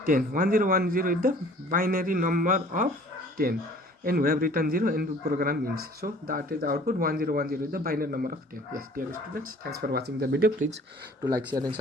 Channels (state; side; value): normal; both; correlation 0.51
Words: 10, 1010 is the binary number of 10, and we have written 0 and the program ends, so that is the output. 1010 is the binary number of 10. Yes, dear students, thanks for watching the video. Please do like, share and